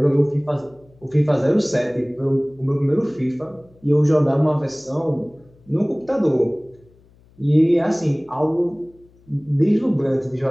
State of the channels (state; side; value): noise; left; hum, 29 dB below the sound